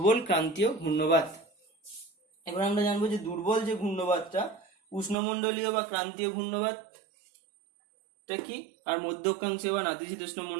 ক্রান্তীয় ঘূর্ণবাত। এবার আমরা জানবো যে দুর্বল যে ঘূর্ণবাতটা, উষ্ণমণ্ডলীয় বা ক্রান্তীয় ঘূর্ণবাতটা কি, আর মধ্য অক্ষাংশীয় বা নাতিশীতোষ্ণ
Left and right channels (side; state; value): left; drops out; at 5.2 s